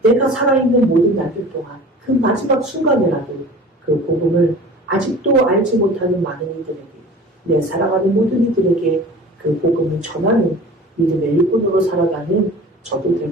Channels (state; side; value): normal; both; correlation 0.41